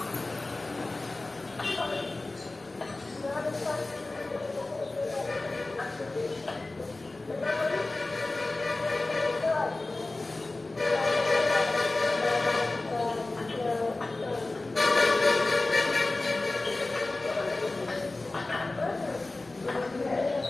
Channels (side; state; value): right; quieter; 3.1 dB